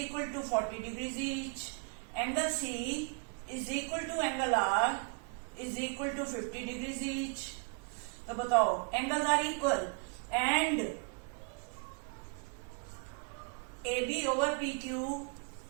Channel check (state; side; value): quieter; left; 37.1 dB